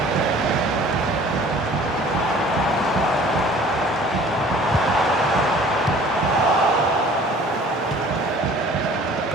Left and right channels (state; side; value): normal; both; correlation 0.50